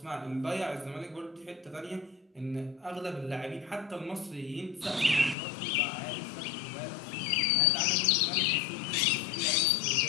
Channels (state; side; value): drops out; right; at 5.4 s